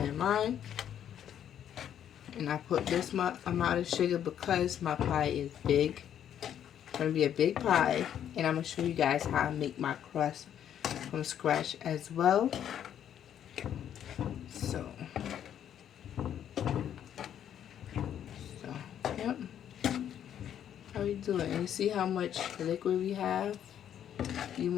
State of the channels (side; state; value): right; quieter; 9.9 dB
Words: in mine. And I put this amount of sugar because my pie is big. It's going to be a big pie. And I'm going to show you guys how I make my crust from scratch as well. So, yep. How we do it? And you see how much liquid we have? You